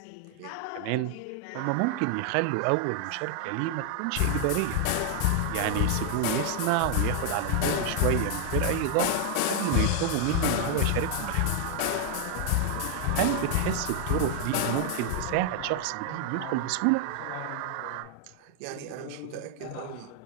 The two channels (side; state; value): both; different; correlation 0.00